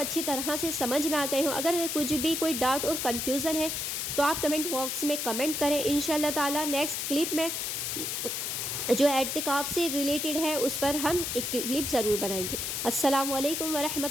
طرح سے سمجھ میں آ گئے ہوں۔ اگر کچھ بھی کوئی ڈاؤٹ اور کنفیوژن ہے تو آپ کمنٹ باکس میں کمنٹ کریں۔ انشاءاللہ تعالی نیکسٹ کلپ میں جو اعتکاف سے ریلیٹڈ ہے اس پر ہم ایک کلپ ضرور بنائیں گے۔ السلام علیکم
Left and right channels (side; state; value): left; noise; hiss, 2 dB below the sound